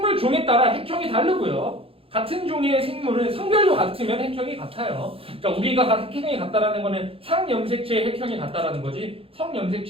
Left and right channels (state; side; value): late; left; 0.27 ms